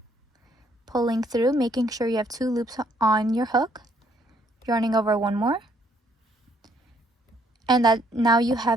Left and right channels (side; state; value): both; normal; correlation 0.67